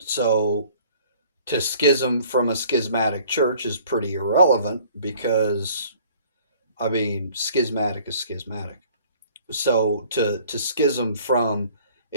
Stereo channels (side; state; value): both; inverted; correlation -0.53